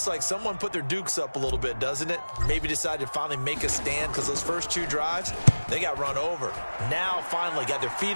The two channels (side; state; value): both; inverted; correlation -1.00